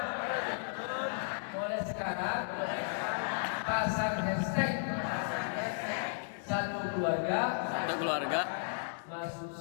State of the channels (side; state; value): right; silent; digital silence